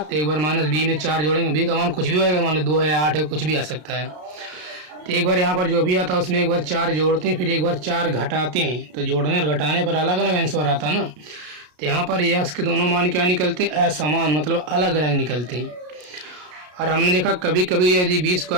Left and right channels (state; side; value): late; left; 33 ms